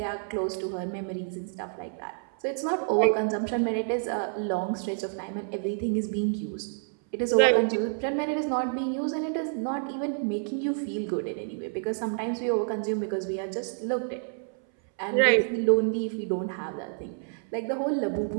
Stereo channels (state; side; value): silent; left; 59 dB below the other